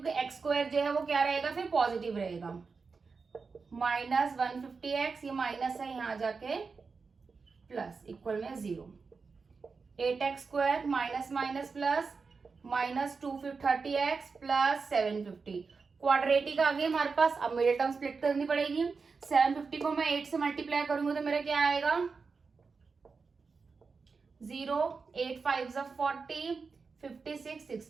क्योंकि x स्क्वायर जो है वो क्या रहेगा, फिर पॉजिटिव रहेगा। माइनस 150x, ये माइनस है यहाँ जाके प्लस, इक्वल में 0। 8x square minus minus plus, minus 230x plus 750। Quadratic आ गई हमारे पास। अब मिडिल टर्म स्प्लिट करनी पड़ेगी। 750 को मैं 8 से मल्टीप्लाई करूंगी तो मेरा क्या आएगा 0, 8 5 40, 56,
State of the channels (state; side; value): quieter; left; 4.8 dB